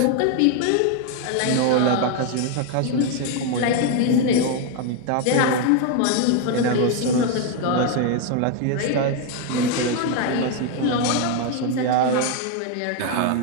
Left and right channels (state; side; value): different; both; correlation 0.01